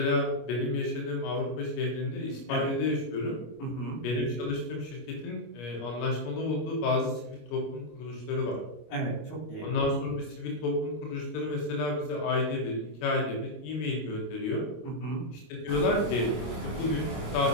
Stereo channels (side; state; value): right; late; 25 ms